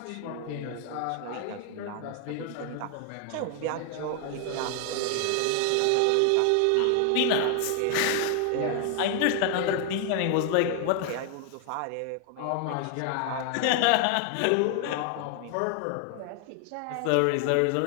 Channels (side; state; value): both; different; correlation 0.00